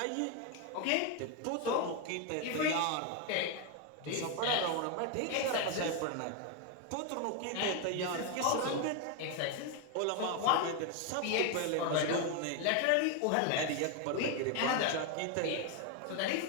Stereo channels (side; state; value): both; different; correlation 0.01